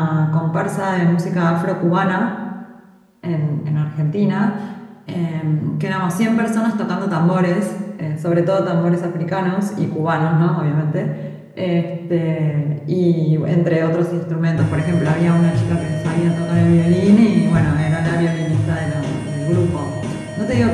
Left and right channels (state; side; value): identical; both; correlation 1.00